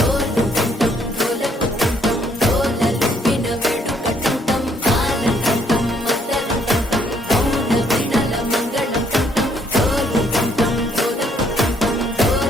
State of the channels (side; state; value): both; normal; correlation 0.68